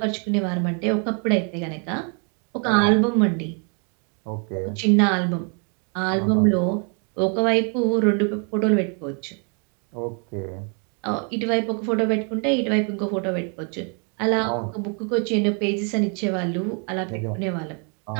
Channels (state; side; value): quieter; left; 39.2 dB